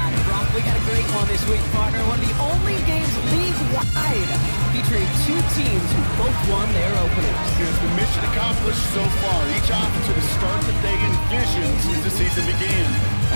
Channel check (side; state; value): both; inverted; correlation -1.00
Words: Brock, we got a great one this week, partner. One of the only games league-wide featuring two teams who both won their openers. It's the mission accomplished so far. Each offensive has started the day envisioned since the season began.